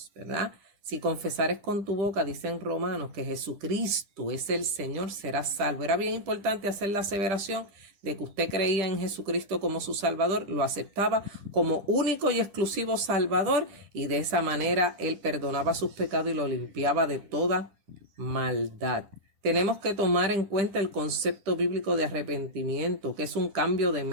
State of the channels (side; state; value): left; late; 10 ms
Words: ¿verdad? Si confesares con tu boca, dicen Romanos, que Jesucristo es el Señor, serás salvo. Era bien importante hacer la aseveración de que usted creía en Jesucristo como su Salvador, lo aceptaba como único y exclusivo Salvador y de esa manera Él perdonaba sus pecados y lo limpiaba de toda maldad. Tenemos que tomar en cuenta el concepto bíblico de arrepentimiento, que es un cambio de